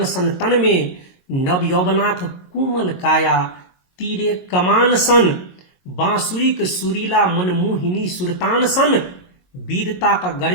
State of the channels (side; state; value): right; late; 22 ms